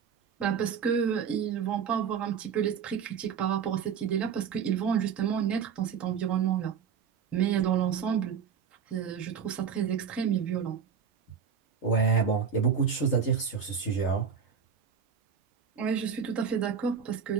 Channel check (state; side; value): quieter; left; 7.0 dB